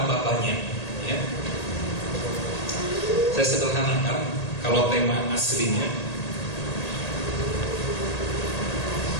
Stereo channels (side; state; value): right; late; 1.8 ms